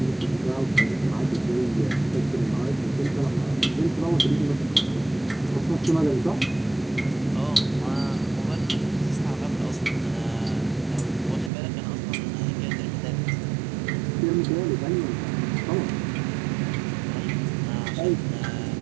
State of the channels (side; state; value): left; drops out; at 11.5 s